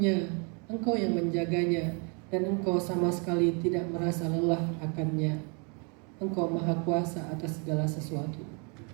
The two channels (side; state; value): left; quieter; 35.1 dB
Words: Engkau yang menjaganya, dan Engkau sama sekali tidak merasa lelah akannya. Engkau Maha Kuasa atas segala sesuatu.